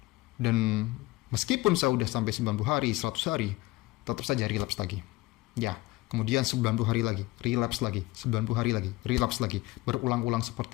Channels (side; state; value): right; quieter; 20.5 dB